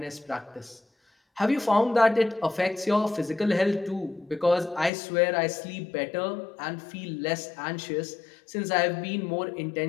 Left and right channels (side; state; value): right; drops out; at 4.9 s